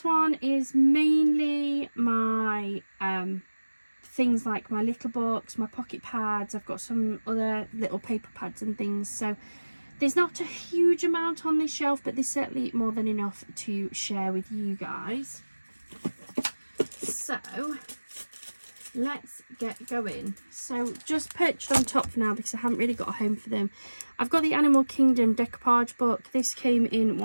one is mainly my things like my little books, my pocket pads. I've got some other little paper pads and things. So there's not a huge amount on this shelf, but there's certainly more than enough to share with you guys. So let's get going. So just perched on top for now because I haven't really got a home for them. I've got the Animal Kingdom decoupage book. This came in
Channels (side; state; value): both; inverted; correlation -1.00